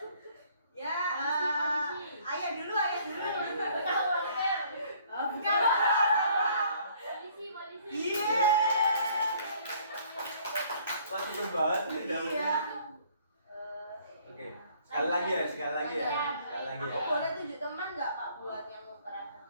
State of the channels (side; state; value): both; inverted; correlation -0.59